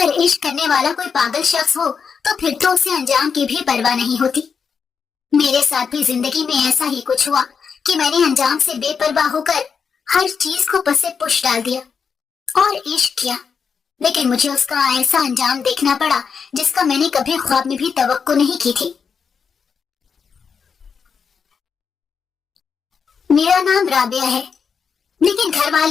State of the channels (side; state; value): right; quieter; 6.2 dB